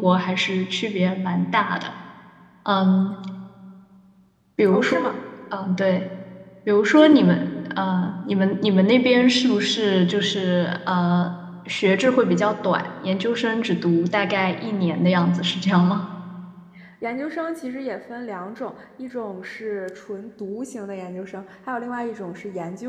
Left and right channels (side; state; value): both; identical; correlation 1.00